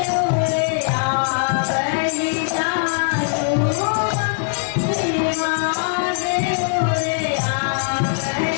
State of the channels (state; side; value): silent; right; digital silence